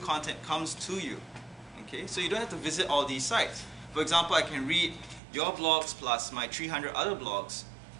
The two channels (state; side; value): drops out; left; at 5.2 s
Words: comes to you. Okay, so you don't have to visit all these sites. For example, I can read your blogs plus my 300 other blogs.